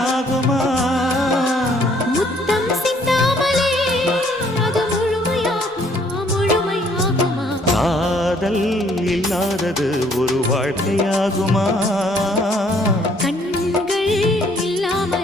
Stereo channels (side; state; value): both; normal; correlation 0.63